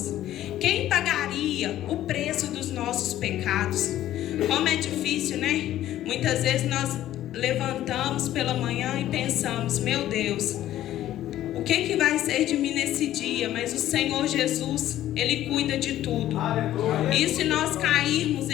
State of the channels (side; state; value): right; quieter; 13.1 dB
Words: Quem pagaria o preço dos nossos pecados? Como é difícil, né? Muitas vezes nós levantamos pela manhã e pensamos: meu Deus, o que vai ser de mim nesse dia? Mas o Senhor Jesus, Ele cuida de tudo. E se nós cairmos,